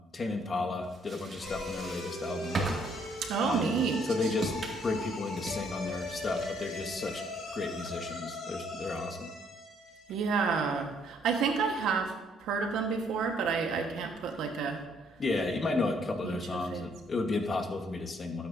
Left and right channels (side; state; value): both; normal; correlation 0.67